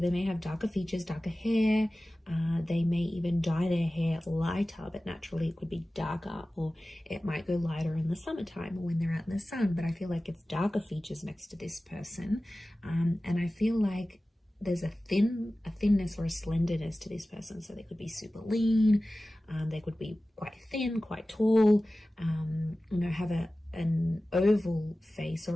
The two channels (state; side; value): normal; both; correlation 0.96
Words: they may have darker features, darker hair. They may even dye their hair lighter, but naturally it could be darker, or it might go lighter in the summertime or when they're out in the sun. But I feel like it's darker features next to this person. And I feel like there's a thinness or a slenderness to this person. So they could be super lean. They could be quite thin, quite tall, have an oval face